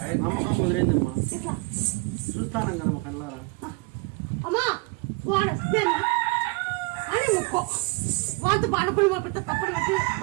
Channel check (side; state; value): left; quieter; 27.6 dB